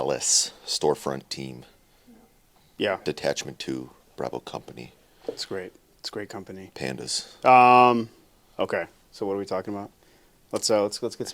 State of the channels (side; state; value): both; identical; correlation 1.00